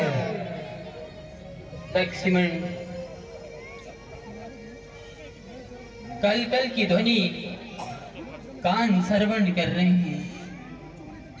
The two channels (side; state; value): both; identical; correlation 1.00